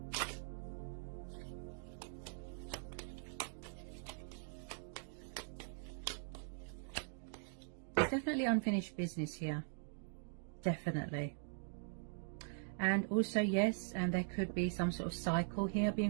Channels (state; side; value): silent; left; digital silence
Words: There's definitely unfinished business here. Definitely. And also, yes, and there could be some sort of cycle here